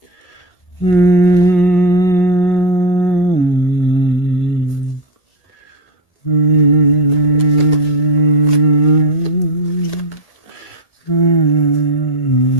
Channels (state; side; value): late; right; 1.8 ms